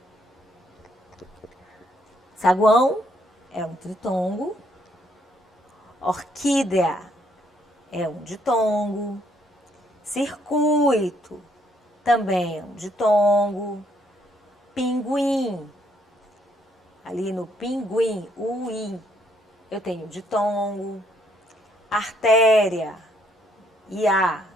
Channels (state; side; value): normal; both; correlation 0.70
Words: Saguão é um tritongo. Orquídea é um ditongo. Circuito também é um ditongo. Pinguim, ali no pinguim, o i, eu tenho ditongo. Artéria, ia,